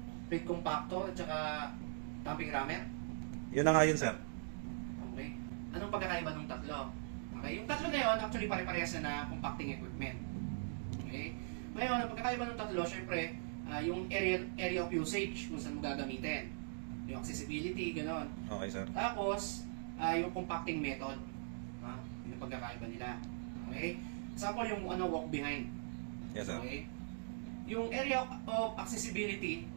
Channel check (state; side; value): silent; left; digital silence